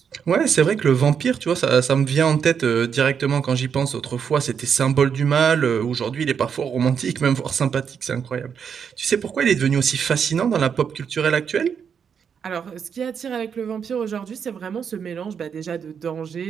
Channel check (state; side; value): quieter; left; 7.1 dB